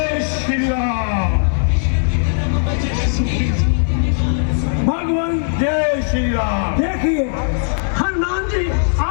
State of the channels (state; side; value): silent; right; digital silence